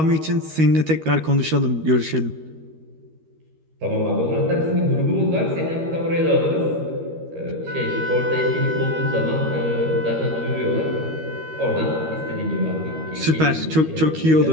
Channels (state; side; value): late; left; 13 ms